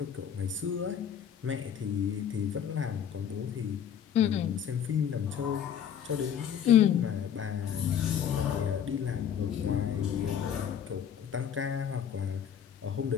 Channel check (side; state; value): right; quieter; 8.7 dB